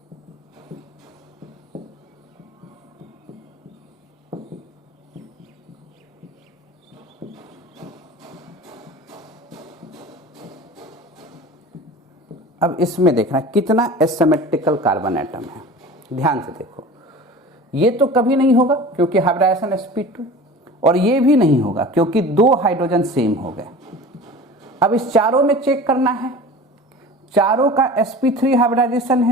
अब इसमें देखना कितना एसिमेट्रिकल कार्बन एटम है, ध्यान से देखो। ये तो कभी नहीं होगा क्योंकि हाइब्रिडाइजेशन sp2, और ये भी नहीं होगा क्योंकि 2 हाइड्रोजन सेम हो गए। अब इस चारों में चेक करना है, चारों का sp3 हाइब्रिडाइजेशन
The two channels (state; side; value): normal; both; correlation 0.38